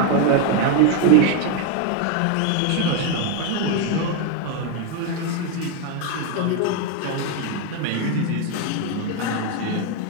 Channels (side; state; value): both; different; correlation 0.01